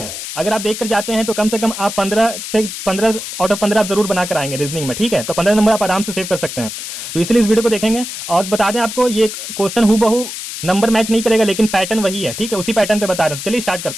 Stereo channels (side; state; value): left; noise; hiss, 8 dB below the sound